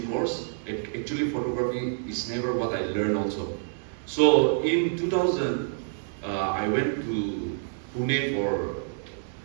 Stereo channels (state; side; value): silent; left; digital silence